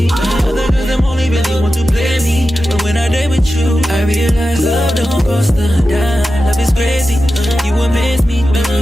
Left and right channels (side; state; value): both; normal; correlation 0.92